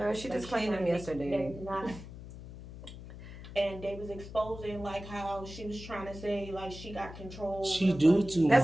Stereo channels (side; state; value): left; noise; hum, 13 dB below the sound